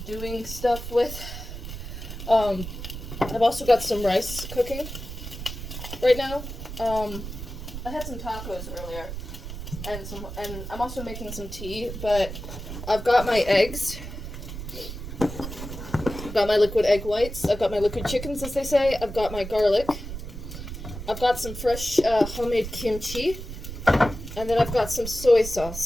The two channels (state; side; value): noise; right; rumble, 9 dB below the sound